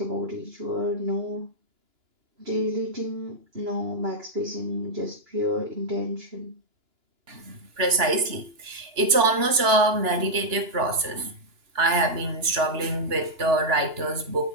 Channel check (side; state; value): left; late; 2.9 ms